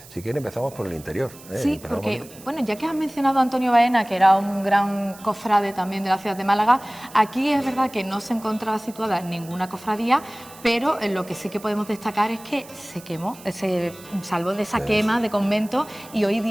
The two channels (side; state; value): right; noise; hiss, 20 dB below the sound